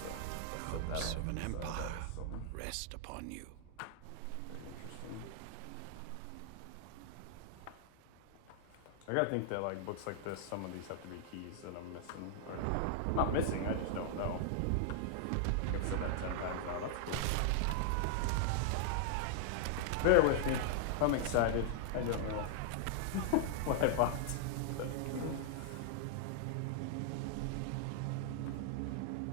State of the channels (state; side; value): different; both; correlation -0.01